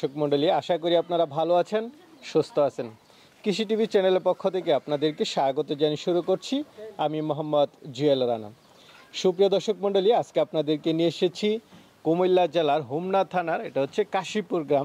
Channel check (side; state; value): both; identical; correlation 1.00